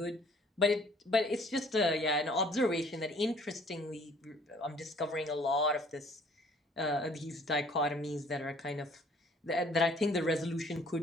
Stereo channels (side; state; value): both; normal; correlation 0.57